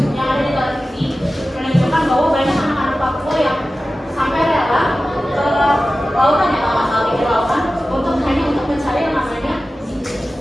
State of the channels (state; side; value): normal; both; correlation 0.95